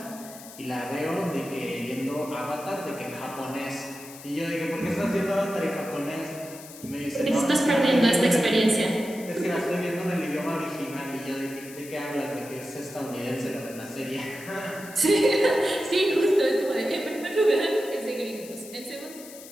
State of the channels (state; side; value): noise; left; hiss, 16 dB below the sound